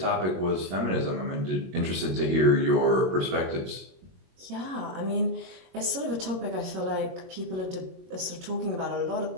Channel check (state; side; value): late; left; 22 ms